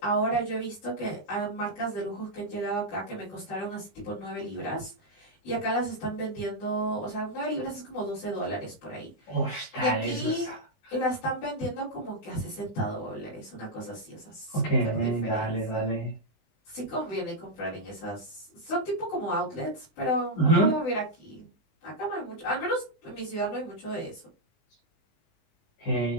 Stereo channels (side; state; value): right; late; 20 ms